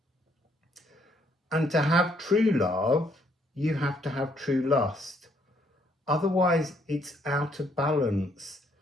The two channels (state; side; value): normal; both; correlation 0.68